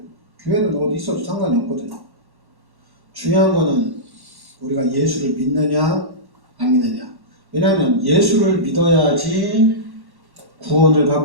교회는 어디 있어도 상관이 없거든요. 중요한 거는 우리가 예수를 믿느냐 안 믿느냐. 왜냐하면 예수를 믿어야지 구원을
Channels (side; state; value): left; late; 1.1 ms